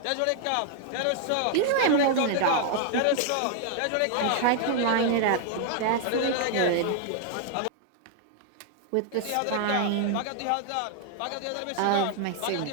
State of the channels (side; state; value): both; different; correlation 0.00